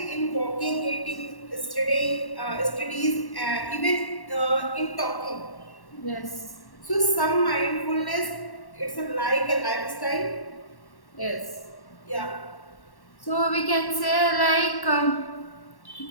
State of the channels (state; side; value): late; right; 1.1 ms